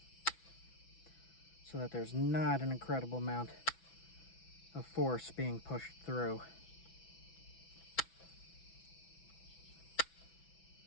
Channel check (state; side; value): late; right; 6.0 ms